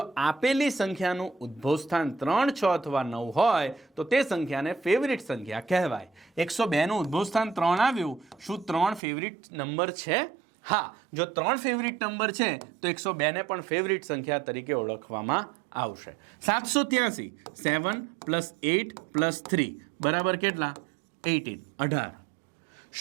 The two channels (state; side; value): drops out; left; at 9.0 s